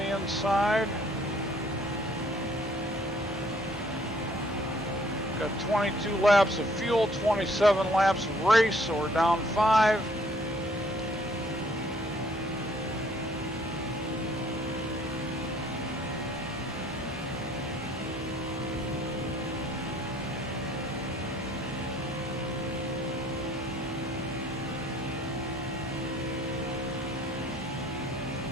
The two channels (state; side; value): normal; both; correlation 0.61